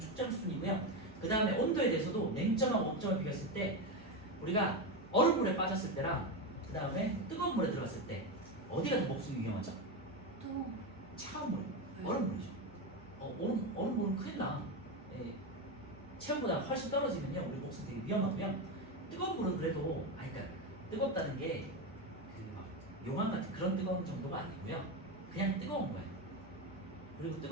순이고요. 그 다음에 온도에 대해서도 냉점하고 온점을 비교했을 때 우리가 얼음물에 빠졌을 때랑 그 다음에 뜨거운 물에 들어갔을 때 어디가 더 목숨이 위험하죠? 또 차가운 물에, 얼음물이죠. 얼음물은 큰일 나. 체온보다 훨씬 떨어지면요 우리 목숨 되게 위험하고요. 뜨거운 물은 그래도 그러니까 뜨겁다는 게 그 막 용암 같은 그런 뜨거운 정도가 아니고요. 그냥 뜨거운 거예요. 그리고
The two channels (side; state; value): both; normal; correlation 0.14